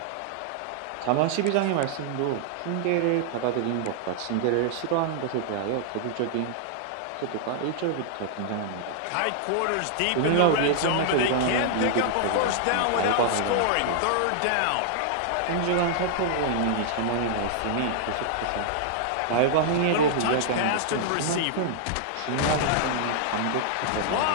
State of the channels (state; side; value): different; both; correlation -0.01